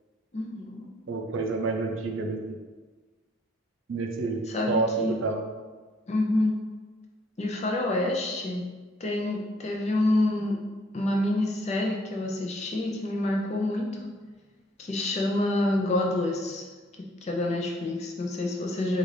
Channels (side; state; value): both; normal; correlation 0.63